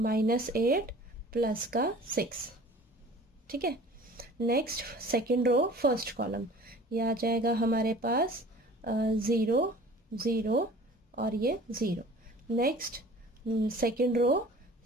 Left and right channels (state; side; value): normal; both; correlation 0.46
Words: प्लस का 6। ठीक है, next second row first column, ये आ जाएगा हमारे पास 0 0 और ये 0। Next second